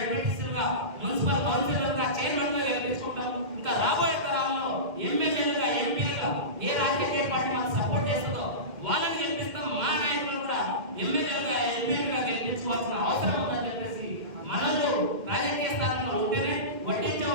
మున్సిపల్ కౌన్సిలర్గా, చైర్మన్గా గెలిపించుకుంటాం. ఇంకా రాబోయే కాలంలో ఎమ్మెల్యేలుగా, ఎంపీలుగా ఏ రాజకీయ పార్టీ మనకు సపోర్ట్ చేస్తుందో వాళ్ళని గెలిపిస్తాం. మా నాయకులు కూడా ఎమ్మెల్యేలుగా, ఎంపీలుగా గెలిపించుకోవాల్సిన అవసరం ఉందని చెప్పేసి మనల్ని రాజకీయ స్థానంలో ఉంటేనే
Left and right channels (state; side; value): late; left; 2.1 ms